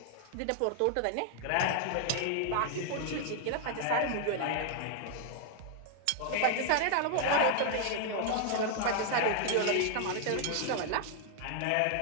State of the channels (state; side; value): different; both; correlation 0.00